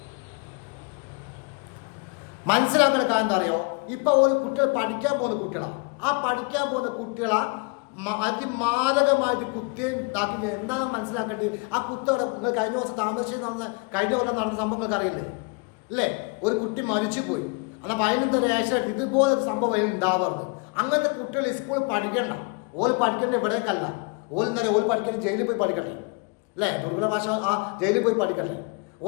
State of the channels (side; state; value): right; quieter; 32.7 dB